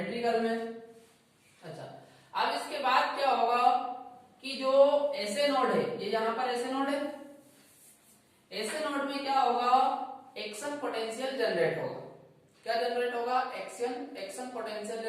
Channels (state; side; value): identical; both; correlation 1.00